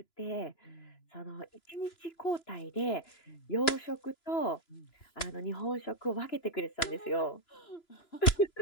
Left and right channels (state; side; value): late; right; 2.9 ms